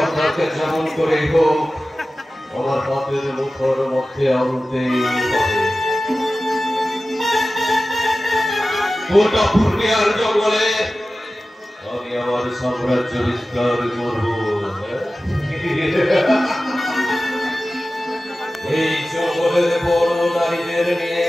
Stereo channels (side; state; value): both; normal; correlation 0.95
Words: যেমন করে হোক আমার পথের মুখর মধ্যে আনতেই হবে। গোটা ফুটিয়ার জঙ্গলে আমি আমার সাম্রাজ্য বিস্তার করব। এই জঙ্গলের বড় নারীদের নিয়ে